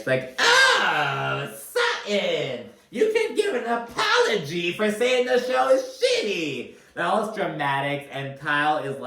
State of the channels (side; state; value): both; identical; correlation 1.00